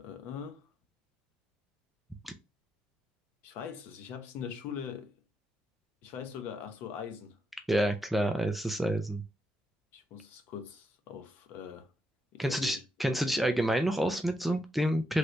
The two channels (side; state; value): both; normal; correlation 0.82